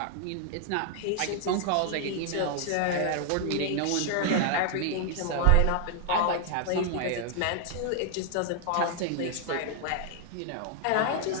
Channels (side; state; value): both; different; correlation 0.00